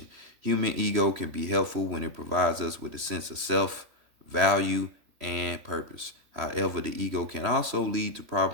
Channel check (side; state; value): left; late; 3.1 ms